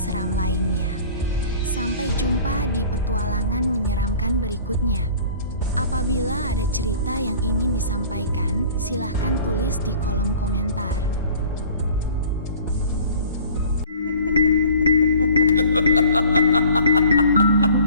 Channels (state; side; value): inverted; both; correlation -0.48